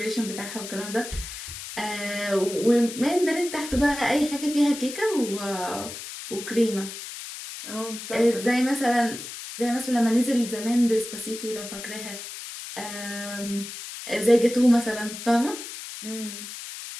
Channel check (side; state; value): left; noise; hiss, 10 dB below the sound